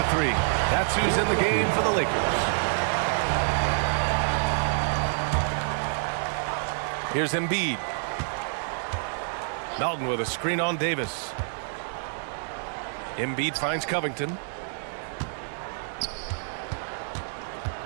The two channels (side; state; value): left; silent; 59 dB below the other